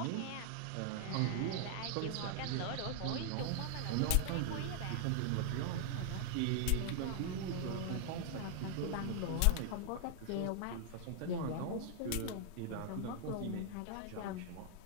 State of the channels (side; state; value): both; different; correlation 0.00